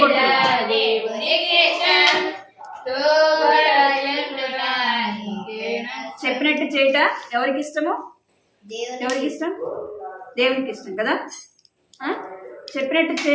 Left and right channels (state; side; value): identical; both; correlation 1.00